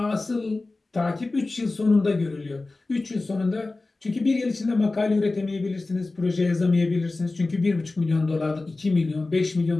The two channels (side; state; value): right; quieter; 3.3 dB